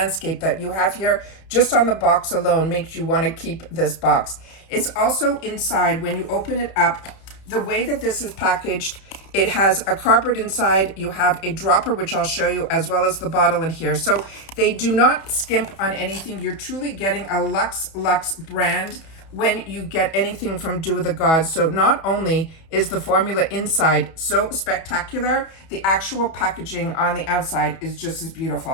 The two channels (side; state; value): right; late; 31 ms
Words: that you have here. Just on the box alone makes you want to keep this box. It's also inside, when you open it up, the way that this is packaged, it has a cardboard inside. You have a dropper, which I'll show you, as well as the bottle in here. So they do not skimp on anything. You're truly getting a Luxe brand when you get anything from Do With The Gods. So not only is the formula inside so spectacular, the actual packaging on the outside is just as